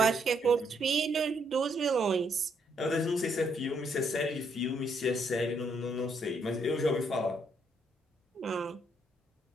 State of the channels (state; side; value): normal; both; correlation 0.73